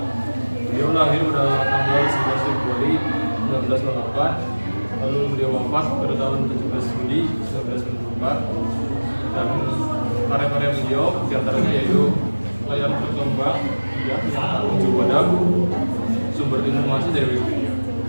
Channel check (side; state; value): both; inverted; correlation -1.00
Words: Beliau lahir pada tanggal 11 Februari 1908, lalu beliau wafat pada tahun 17 Juli 1994. Dan karya-karya beliau diantaranya yaitu Layar Berkembang, ya, yang merujuk pada sumber informasi dari Wikipedia.